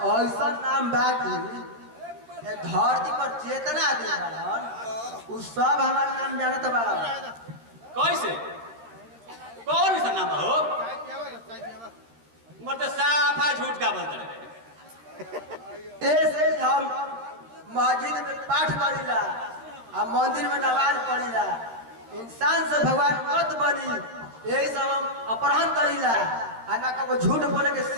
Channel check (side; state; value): left; late; 13 ms